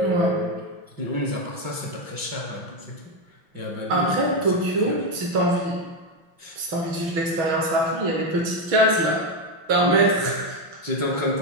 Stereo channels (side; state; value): left; late; 5.9 ms